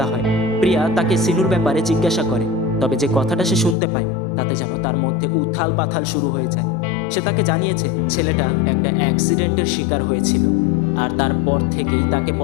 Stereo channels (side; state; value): right; drops out; at 3.8 s